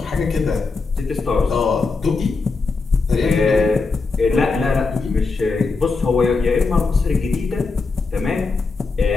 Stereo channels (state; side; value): quieter; right; 4.1 dB